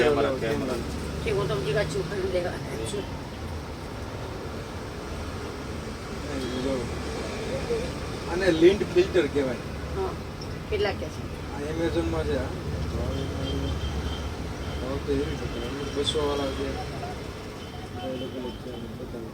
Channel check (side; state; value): both; identical; correlation 1.00